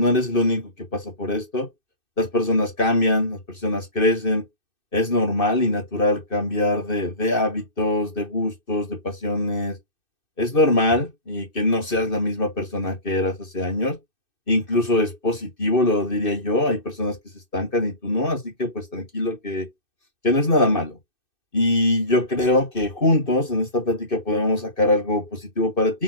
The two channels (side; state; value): right; late; 2.6 ms